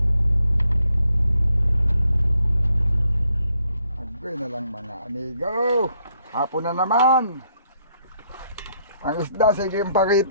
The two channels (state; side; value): inverted; both; correlation -0.72